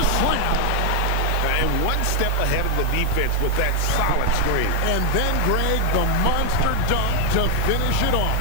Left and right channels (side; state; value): both; different; correlation 0.00